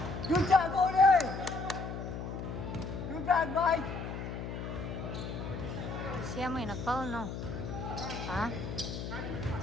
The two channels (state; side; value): noise; left; hum, 6 dB below the sound